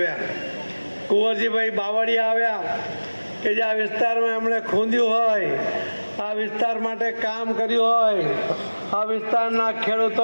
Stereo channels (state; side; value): inverted; both; correlation -1.00